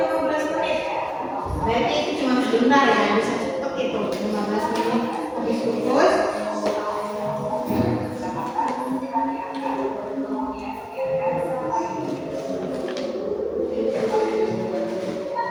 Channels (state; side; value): identical; both; correlation 1.00